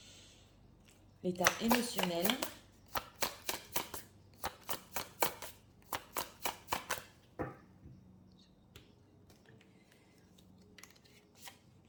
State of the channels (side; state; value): both; identical; correlation 1.00